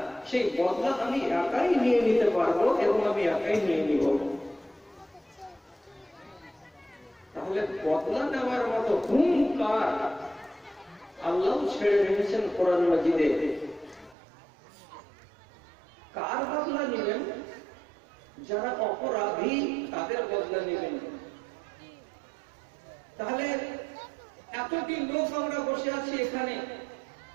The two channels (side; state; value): left; drops out; at 14.2 s